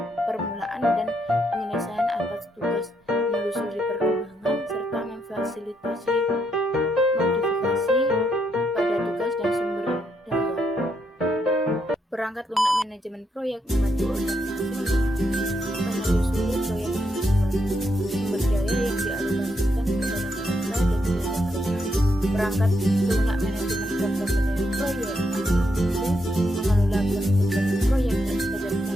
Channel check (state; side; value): normal; both; correlation 0.78